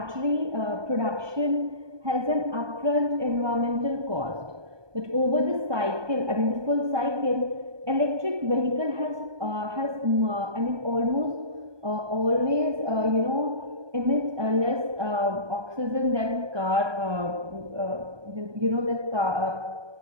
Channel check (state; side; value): late; left; 1.2 ms